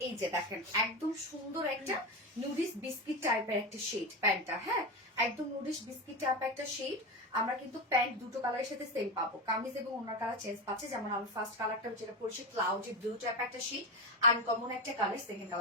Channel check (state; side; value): normal; both; correlation 0.18